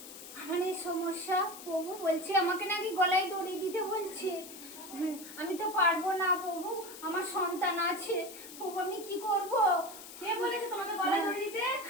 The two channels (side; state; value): left; noise; hiss, 14 dB below the sound